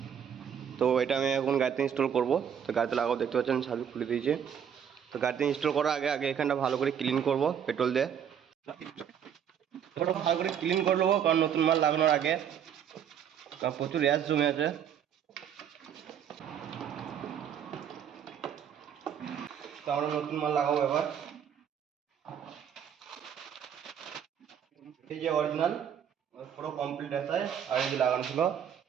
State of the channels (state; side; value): quieter; left; 8.5 dB